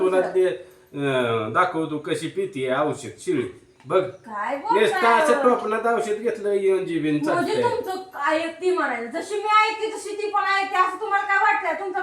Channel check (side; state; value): both; identical; correlation 1.00